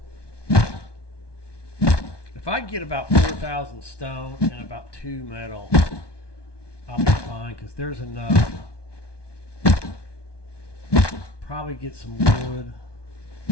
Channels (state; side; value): late; right; 1.2 ms